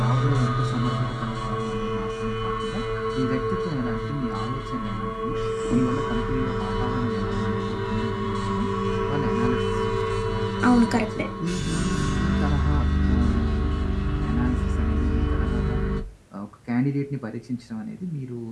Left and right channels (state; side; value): identical; both; correlation 1.00